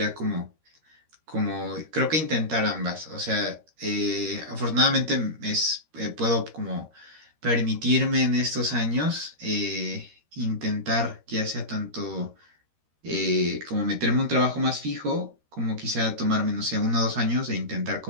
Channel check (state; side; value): late; left; 13 ms